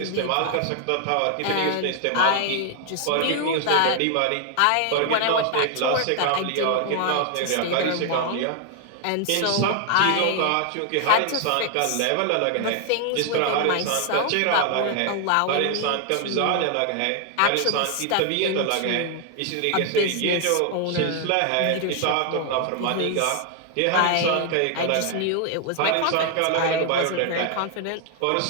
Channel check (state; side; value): different; both; correlation 0.00